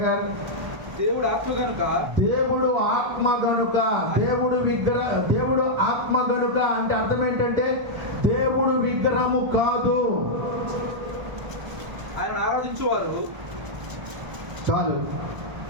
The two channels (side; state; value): left; late; 1.3 ms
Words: దేవుడు ఆత్మ గనుక, దేవుడు ఆత్మ గనుక, దేవుడు ఆత్మ గనుక అంటే అర్థం ఏంటంటే దేవుడు విగ్రహము కాదు. ఆయన ఆరాధించేవారు చాలు.